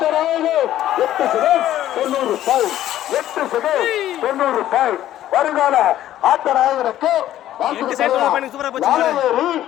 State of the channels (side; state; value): right; quieter; 12.8 dB